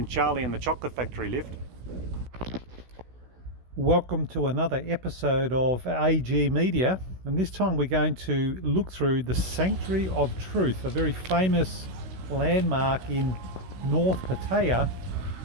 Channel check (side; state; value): left; late; 16 ms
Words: Charlie and the Chocolate Factory lift. Welcome to another episode of AG Media, and this time we're going to look through the Sanctuary of Truth, a very famous landmark in North Pattaya